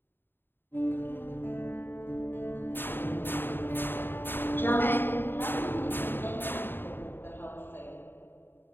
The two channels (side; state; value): right; late; 0.099 ms